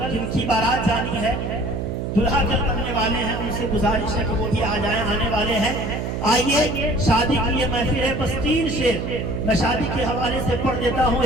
جن کی بارات جانی ہے، دلہا کل بننے والے ہیں، ان سے گزارش ہے کہ وہ بھی آ جائیں، آنے والے ہیں. آئیے شادی کی یہ محفل ہے، بس 3 شعر میں شادی کے حوالے سے پڑھ دیتا ہوں.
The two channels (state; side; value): noise; right; hum, 3 dB below the sound